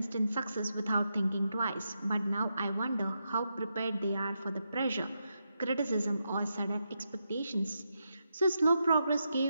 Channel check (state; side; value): inverted; both; correlation -0.85